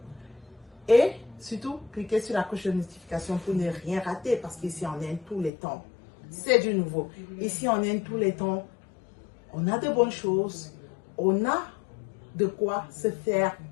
et surtout cliquez sur la cloche de notification pour ne rien rater parce qu'ici on Inde tous les temps. C'est du nouveau. Ici on Inde tous les temps. On a de bonnes choses. On a de quoi se faire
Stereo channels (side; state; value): right; drops out; at 5.5 s